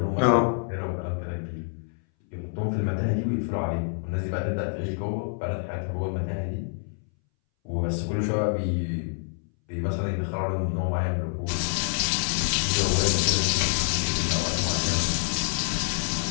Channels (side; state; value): right; silent; 60 dB below the other